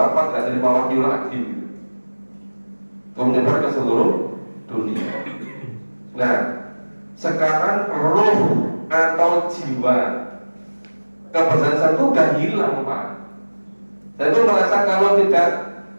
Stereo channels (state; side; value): inverted; both; correlation -1.00